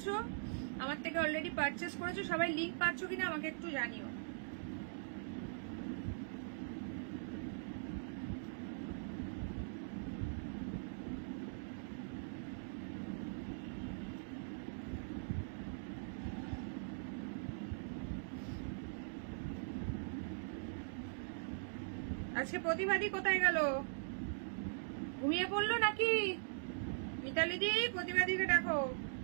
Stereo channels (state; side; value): silent; left; digital silence